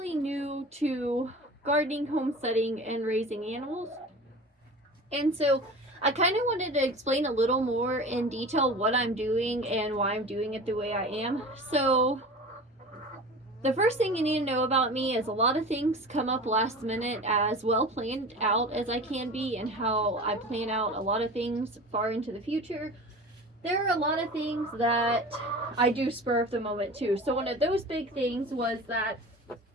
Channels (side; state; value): both; normal; correlation 0.35